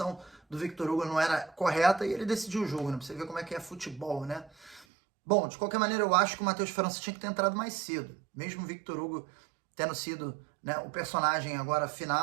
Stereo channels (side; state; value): left; drops out; at 4.9 s